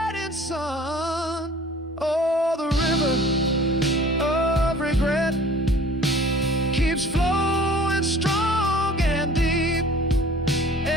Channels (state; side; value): normal; both; correlation 0.48